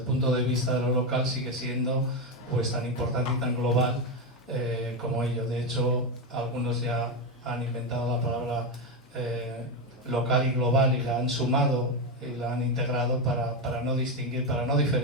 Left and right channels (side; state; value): both; normal; correlation 0.10